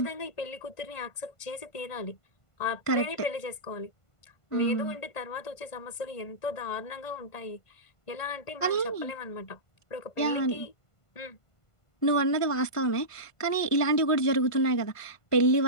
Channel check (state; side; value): late; right; 1.5 ms